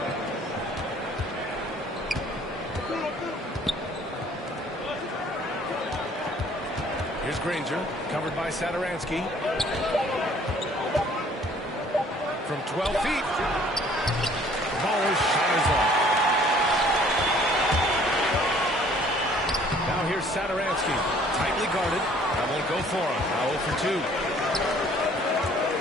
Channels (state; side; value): normal; both; correlation 0.56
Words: Here's Granger, covered by Sadaransky. From 12 feet. Baller's shot is off. Now here's Sadaransky, tightly guarded. That won't go for him. Now 0 for 2.